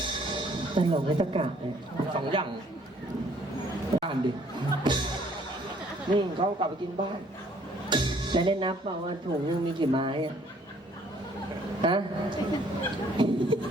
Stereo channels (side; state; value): both; normal; correlation 0.61